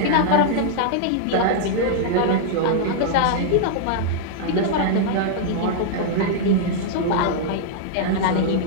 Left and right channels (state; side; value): different; both; correlation -0.02